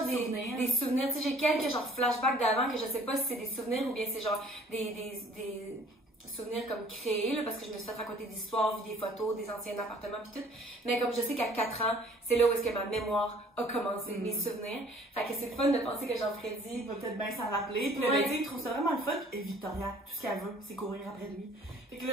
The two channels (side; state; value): both; normal; correlation 0.54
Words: des souvenirs. Tu sais, j'ai quelques genre flashbacks d'avant que je sais pas si c'est des souvenirs ou bien c'est genre des souvenirs comme créés, là, parce que je me suis fait raconter des histoires, vu des photos, des anciens appartements pis tout. Mais comme je sais qu'à 4 ans, c'est là où est-ce que ma mémoire a commencé, mes souvenirs. Fait que c'est le fun de penser que Jean-Freddy va peut-être bien s'en rappeler. Puis là, ben, il trouve ça vraiment le fun. Et Victoria, tout ce qu'elle veut, c'est courir après lui. Fait que